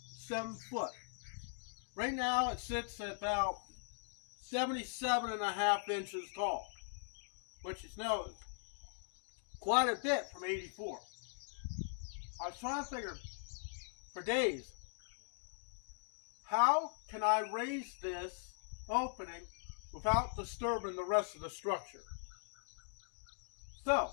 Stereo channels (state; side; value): silent; right; digital silence